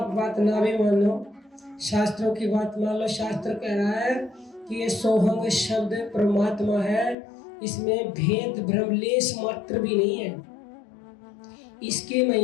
बात ना भी मानो, शास्त्रों की बात मान लो। शास्त्र कह रहा है कि ये सोहंग शब्द परमात्मा है, इसमें भेद भ्रम लेस मात्र भी नहीं है। इसके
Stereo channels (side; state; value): right; drops out; at 7.2 s